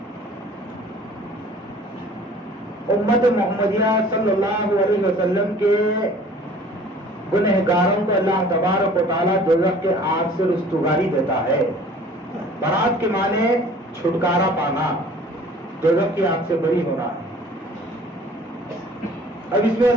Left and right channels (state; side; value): normal; both; correlation 0.49